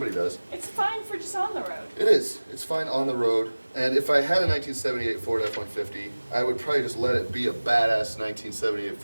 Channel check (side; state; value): both; inverted; correlation -1.00